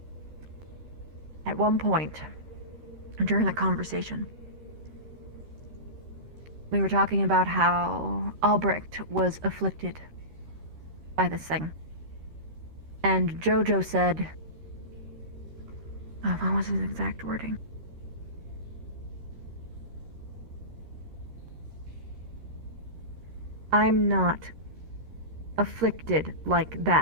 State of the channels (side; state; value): left; late; 13 ms